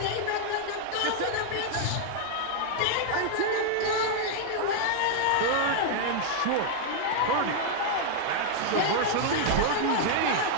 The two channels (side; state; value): both; different; correlation 0.00